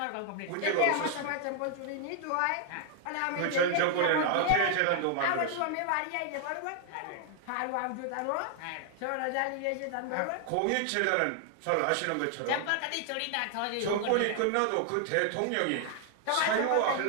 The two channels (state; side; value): different; both; correlation 0.00